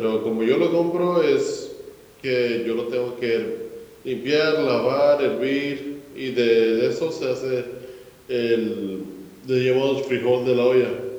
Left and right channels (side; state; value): both; identical; correlation 1.00